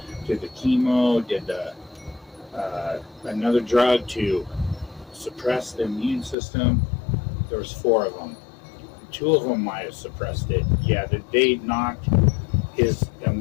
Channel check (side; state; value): right; drops out; at 6.4 s